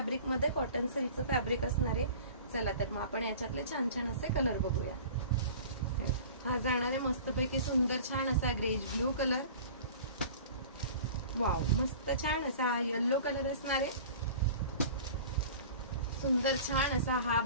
मध्ये कॉटन सिल्कचं फॅब्रिक असणार आहे. चला तर मग आपण याच्यातले छान छान असे कलर बघूया. हा जाणार आहे मस्तपैकी सुंदर छान असा ग्रेज ब्लू कलर. वाव मस्त छान असा येलो कलर असणार आहे. सुंदर छान असा हा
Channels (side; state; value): both; inverted; correlation -0.41